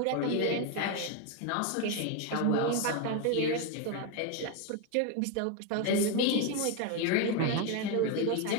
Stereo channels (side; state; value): both; different; correlation 0.01